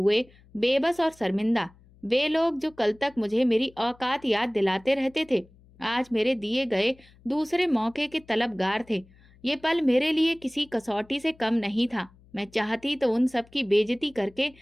बेबस और शर्मिंदा। वे लोग जो कल तक मुझे मेरी औकात याद दिलाते रहते थे, आज मेरे दिए गए दूसरे मौके के तलबगार थे। ये पल मेरे लिए किसी कसौटी से कम नहीं था। मैं चाहती तो उन सब की बेइज्जती करके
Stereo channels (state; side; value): noise; left; hum, 27 dB below the sound